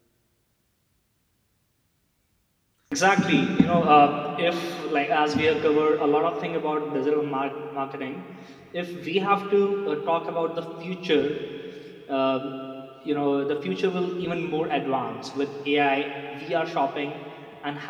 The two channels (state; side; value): identical; both; correlation 1.00